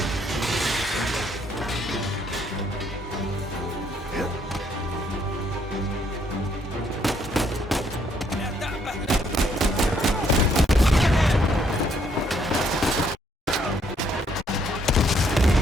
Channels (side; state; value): both; normal; correlation 0.70